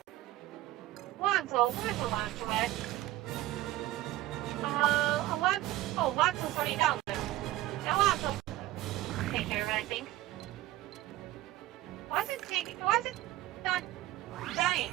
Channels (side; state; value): left; quieter; 15.4 dB